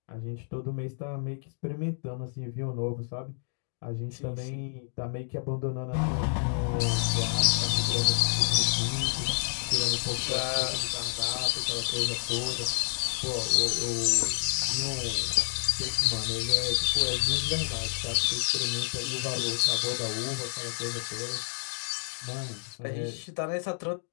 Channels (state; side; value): silent; right; digital silence